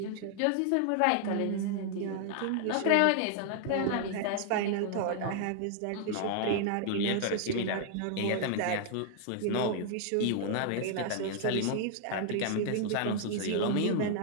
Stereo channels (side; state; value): both; different; correlation 0.00